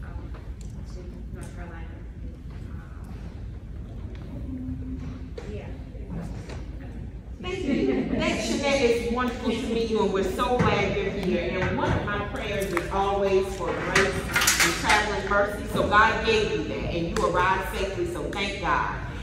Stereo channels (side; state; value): both; identical; correlation 1.00